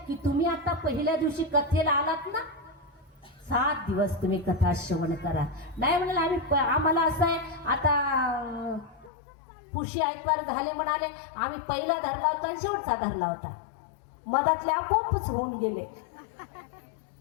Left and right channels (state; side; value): drops out; right; at 9.1 s